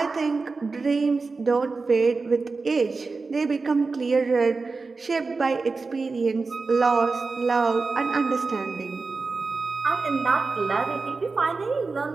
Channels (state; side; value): quieter; left; 4.1 dB